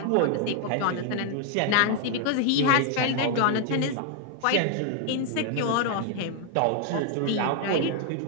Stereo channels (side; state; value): both; different; correlation 0.00